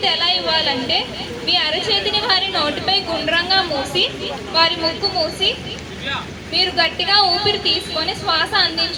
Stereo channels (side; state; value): both; identical; correlation 1.00